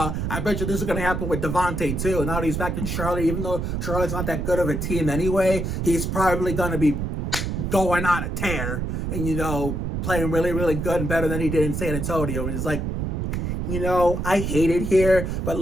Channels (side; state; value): right; noise; rumble, 2 dB below the sound